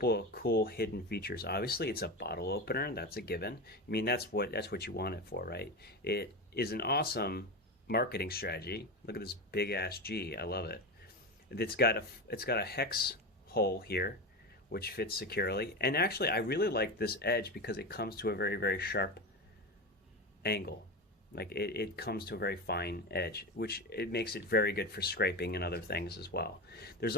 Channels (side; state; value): both; normal; correlation 0.20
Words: of cool hidden features. Obviously, it's a bottle opener. That's a given. I mean, that's what you want it for, right? It is an awesome marketing strategy. Look at this big ass G. I love it. It's got a hex hole here, which fits securely. And actually, I really like this edge because it comes to a very, very sharp angle. Like it comes to a very fine edge, which it makes it very good for scraping and other things as well. There's